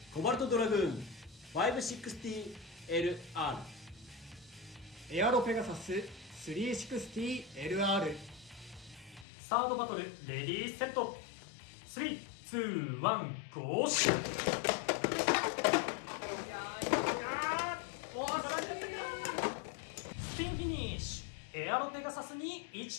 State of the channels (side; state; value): right; drops out; at 9.2 s